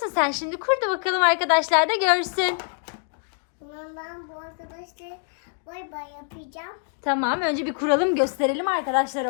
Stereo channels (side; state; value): right; silent; 58 dB below the other